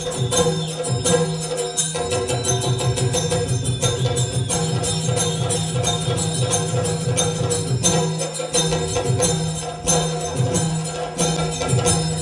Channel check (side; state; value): both; identical; correlation 1.00